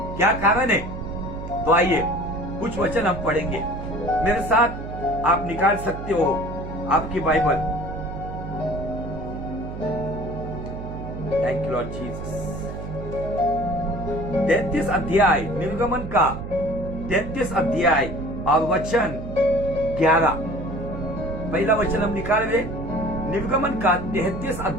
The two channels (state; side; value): noise; right; hum, 8 dB below the sound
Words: क्या कारण है? तो आइए कुछ वचन हम पढ़ेंगे। मेरे साथ आप निकाल सकते हो आपकी Bible. Thank you Lord Jesus. 33 अध्याय, निर्गमन का 33 अध्याय और वचन 11। पहला वचन हम निकाल रहे, निर्गमन का 33